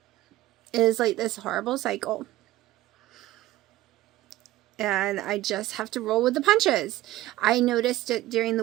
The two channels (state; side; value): quieter; left; 15.8 dB